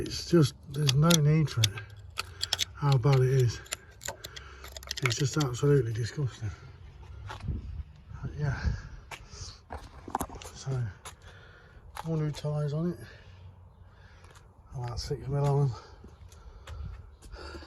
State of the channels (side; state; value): both; identical; correlation 1.00